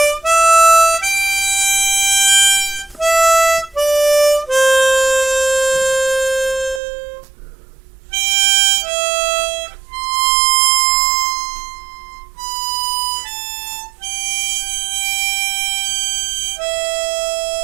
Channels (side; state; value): left; drops out; at 6.8 s